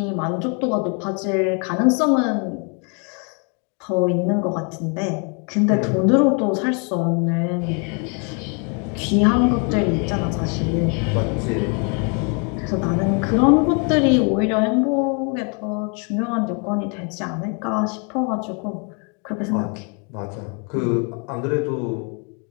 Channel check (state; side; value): quieter; right; 36.3 dB